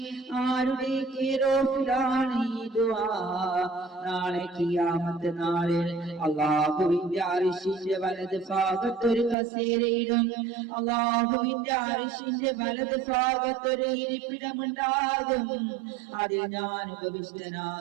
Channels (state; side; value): drops out; left; at 9.3 s